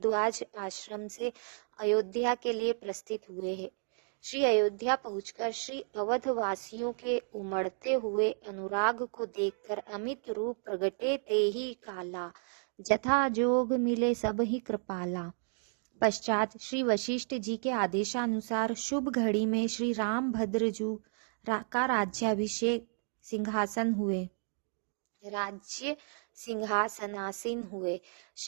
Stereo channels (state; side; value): silent; left; 56 dB below the other